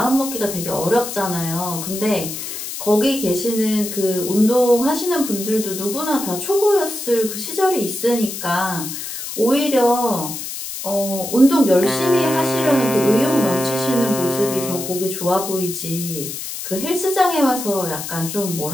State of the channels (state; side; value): noise; left; hiss, 7 dB below the sound